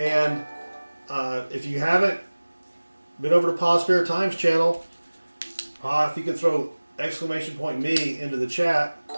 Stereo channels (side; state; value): both; inverted; correlation -1.00